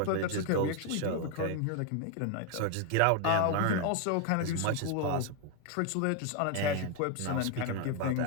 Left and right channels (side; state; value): both; different; correlation 0.01